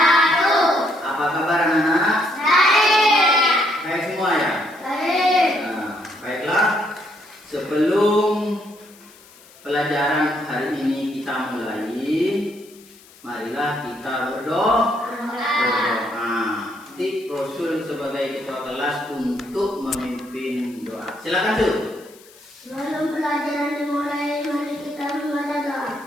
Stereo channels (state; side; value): noise; left; hiss, 25 dB below the sound